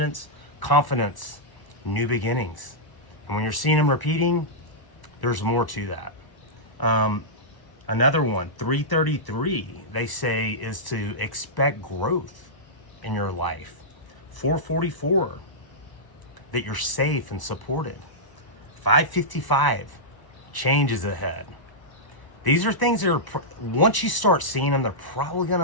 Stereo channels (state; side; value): late; right; 1.0 ms